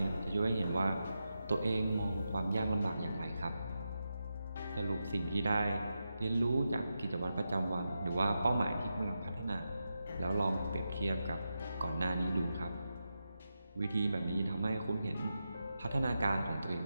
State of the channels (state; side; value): inverted; both; correlation -0.89